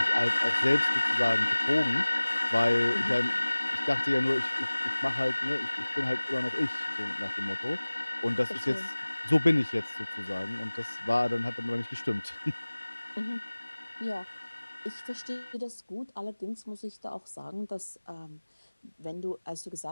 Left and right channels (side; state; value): both; inverted; correlation -1.00